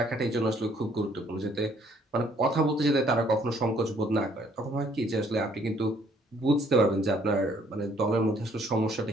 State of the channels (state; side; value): normal; both; correlation 0.63